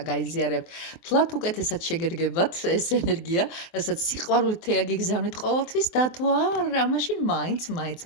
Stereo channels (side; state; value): right; late; 23 ms